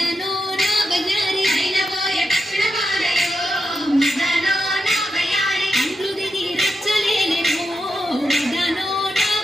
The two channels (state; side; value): normal; both; correlation 0.87